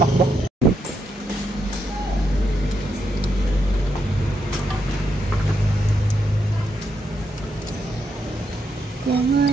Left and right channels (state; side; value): normal; both; correlation 0.80